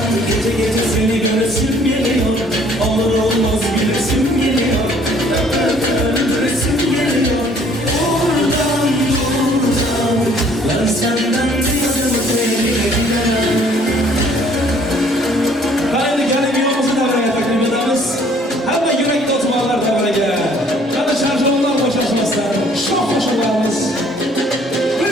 gece gece seni göresim geliyor olur olmaz gülesim geliyor öpe öpe öldüresim geliyor oradan buradan ben senden bir adım öteye bile gidemem Qani gelin yuvamizni davraga taklif etamiz. Hamma yuragida o'tiborlar davraga. Qani sharjonlar bo'shashmasin. Shoh qo'shinlarimiz.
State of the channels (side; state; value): both; normal; correlation 0.59